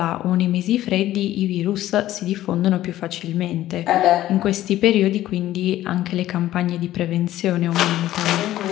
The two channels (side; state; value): right; quieter; 14.1 dB